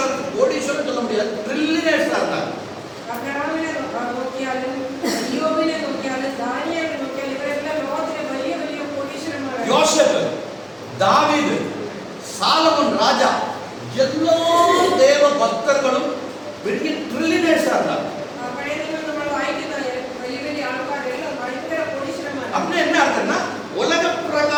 சொல்ல முடியாது, ட்ரில்லியனர்ஸா இருந்தாங்க. ஆபிரகாமினை நோக்கியாலும் யோபினை நோக்கியாலும் தானியேலை நோக்கியாலும் இவரெல்லாம் லோகத்திலே பெரிய பெரிய கோடீஸ்வரன். யோசேப்பு, தாவீது, சாலமோன் ராஜா, எல்லா தேவ பக்தர்களும் பெரிய ட்ரில்லியனர்ஸா இருந்தாங்க. அப்படி என்ன அர்த்தம்னா, உலக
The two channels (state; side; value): identical; both; correlation 1.00